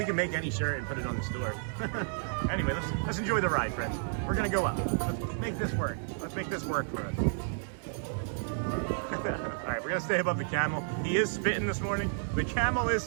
can make any shirt and put it on the store. Anyway, let's enjoy the ride, friends. We're going to go up. Let's make this work. Let's make this work for us. All right, we're going to stay above the camel. He is spitting this morning. The camel is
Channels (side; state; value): left; silent; digital silence